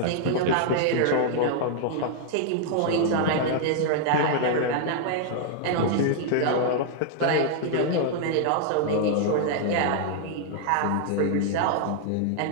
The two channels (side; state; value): both; different; correlation 0.00